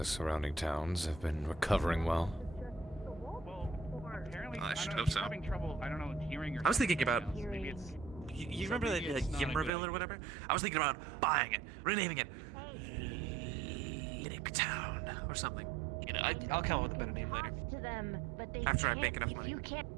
surrounding towns have been recovering well. I should hope so. I was thinking about. You remember that Yimmerville or whatever? I was thinking about buying it, renaming it Linux Town or something. You know, I'll come up with a better name later. To them, but they After I can't, make enough if money. you can't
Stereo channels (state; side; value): drops out; left; at 9.7 s